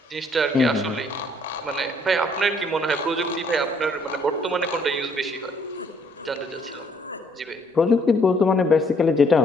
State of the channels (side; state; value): both; normal; correlation 0.65